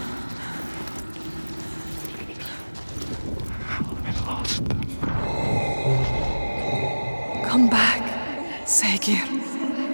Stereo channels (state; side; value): inverted; both; correlation -1.00